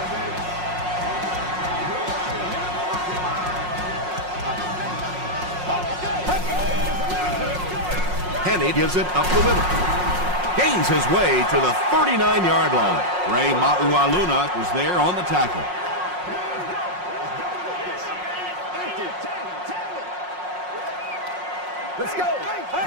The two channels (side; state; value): left; late; 5.5 ms